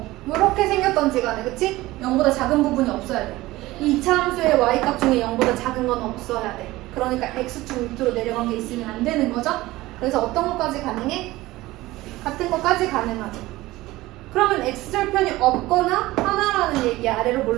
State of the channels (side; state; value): left; quieter; 18.3 dB